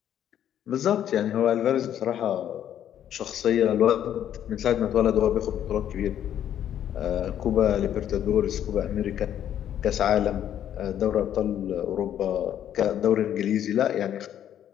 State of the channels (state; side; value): quieter; right; 10.4 dB